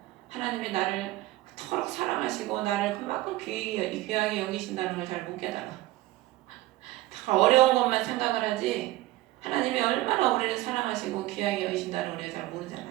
하나님이 나를 그토록 사랑하시고 나를 그만큼 귀하게 여기신다는 걸 잘 못 깨달아. 다 어려운 것만 생각을 하지 하나님이 얼마나 우리를 사랑하시고 귀하게 여기신다는 걸 우리가 잘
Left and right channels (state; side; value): quieter; left; 17.2 dB